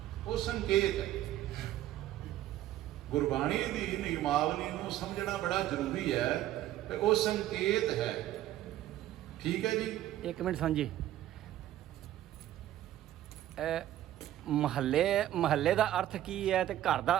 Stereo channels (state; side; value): quieter; left; 13.2 dB